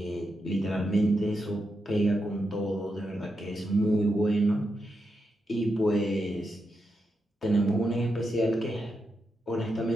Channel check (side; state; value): both; normal; correlation 0.85